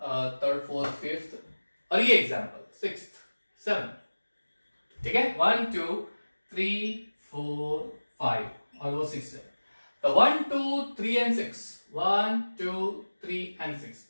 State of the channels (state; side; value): inverted; both; correlation -1.00